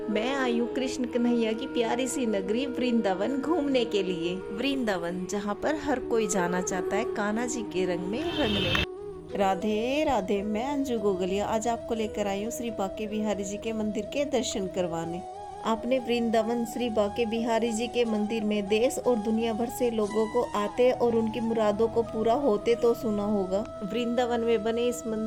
मैं आई हूँ कृष्ण कन्हैया की प्यारी सी नगरी वृंदावन घूमने के लिए। वृंदावन जहाँ पर हर कोई जाना चाहता है कान्हा जी के रंग में रंगने। राधे राधे। मैं अंजू गोगलिया आज आपको लेकर आई हूँ श्री बांके बिहारी जी के मंदिर के दर्शन करवाने। आपने वृंदावन श्री बांके बिहारी जी के मंदिर में देश और दुनिया भर से लोगों को आते और उनकी मुरादों को पूरा होते तो सुना होगा। वृंदावन में बने इस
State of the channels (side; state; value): both; identical; correlation 1.00